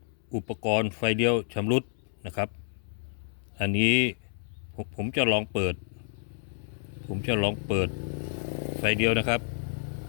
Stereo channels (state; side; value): silent; right; 58 dB below the other